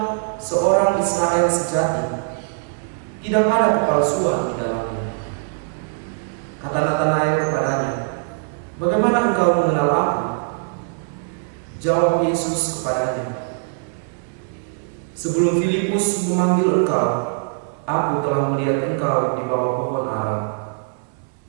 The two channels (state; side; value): silent; left; 64 dB below the other